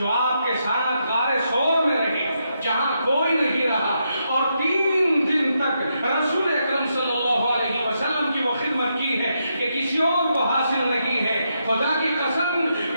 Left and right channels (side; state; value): both; inverted; correlation -0.82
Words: آپ کے ساتھ غار ثور میں رہے جہاں کوئی نہیں رہا اور 3 دن تک رسول اکرم صلی اللہ علیہ وسلم کی وہ خدمت کی ہے کہ کسی اور کو حاصل نہیں ہے۔ خدا کی قسم